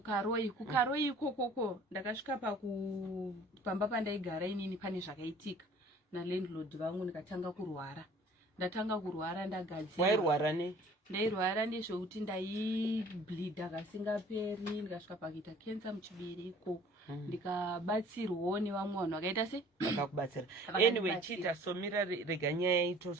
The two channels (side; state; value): both; normal; correlation 0.51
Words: kuKaroi ikoko ndakasvika pamba pandaigara inini pane zvakaitika nalandlord vangu ndikatanga kurwara. Ndatanga kurwara ndagadzira. Wairwara ne? Ndairwara nezvekuti ndaibleeda kasingaperi ndikasvika pakuita cancer muchibereko. Ndikabatsirwawo nevamwe vanhu vakaita se vakakubatsira. Anyway, chita somira rega nyaya